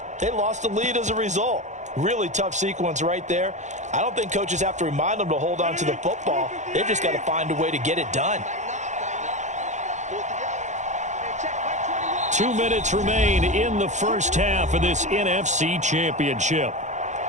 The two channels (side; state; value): left; late; 0.34 ms